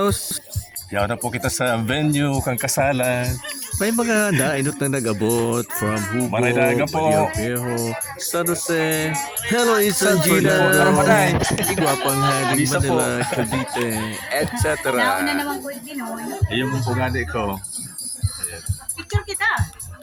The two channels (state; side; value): identical; both; correlation 1.00